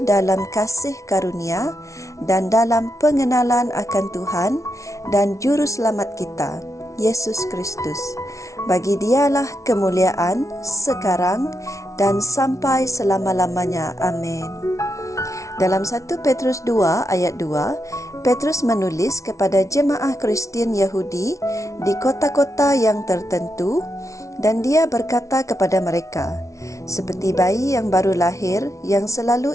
dalam kasih karunia dan dalam pengenalan akan Tuhan dan Juru Selamat kita, Yesus Kristus. Bagi Dialah kemuliaan sekarang dan sampai selama-lamanya. Amin. Dalam 1 Petrus 2 ayat 2, Petrus menulis kepada jemaah Kristian Yahudi di kota-kota yang tertentu dan dia berkata kepada mereka, seperti bayi yang baru lahir yang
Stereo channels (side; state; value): right; late; 0.15 ms